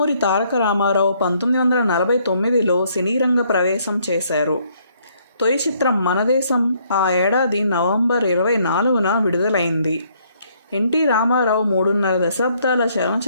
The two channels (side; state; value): both; inverted; correlation -0.68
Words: తారక రామారావు 1949లో సినీరంగ ప్రవేశం చేశారు. తొలి చిత్రం మనదేశం ఆ ఏడాది నవంబర్ 24న విడుదలైంది. ఎన్టీ రామారావు 3.5 దశాబ్దాల